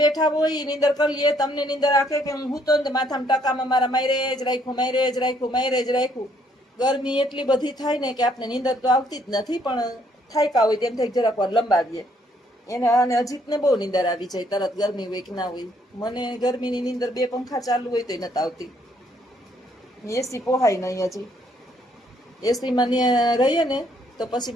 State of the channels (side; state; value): both; normal; correlation 0.68